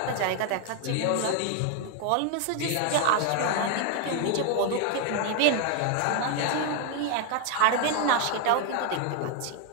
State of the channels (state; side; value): different; both; correlation 0.00